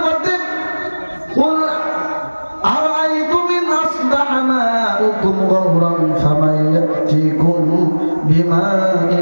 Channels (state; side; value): inverted; both; correlation -1.00